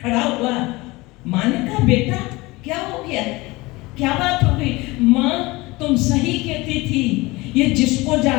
खड़ा हुआ। माँ ने कहा, बेटा क्या हो गया, क्या बात हो गई? माँ तुम सही कहती थी, ये जिसको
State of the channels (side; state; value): right; quieter; 22.0 dB